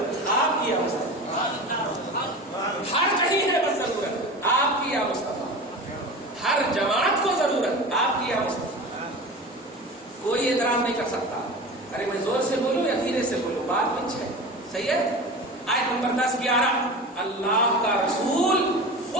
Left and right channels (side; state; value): both; normal; correlation 0.32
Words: آپ کی یا مصطفیٰ، ہر کہیں ہے بس ضرورت آپ کی یا مصطفیٰ، ہر جماعت کو ضرورت آپ کی یا مصطفیٰ. کوئی اعتراض نہیں کر سکتا. ارے میں زور سے بولوں یا دھیرے سے بولوں، بات کچھ ہے. صحیح ہے. آیت نمبر 10-11 اللہ کا رسول